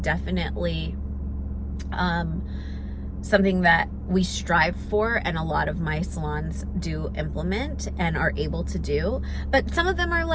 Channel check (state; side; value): identical; both; correlation 1.00